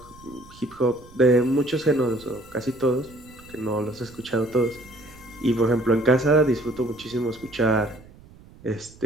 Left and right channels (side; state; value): right; noise; rumble, 22 dB below the sound